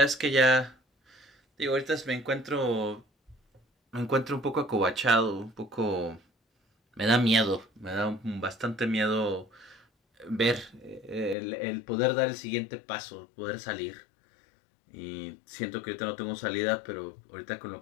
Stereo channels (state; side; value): drops out; right; at 11.4 s